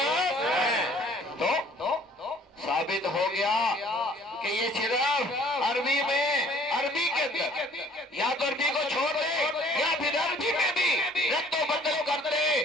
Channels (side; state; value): both; normal; correlation 0.56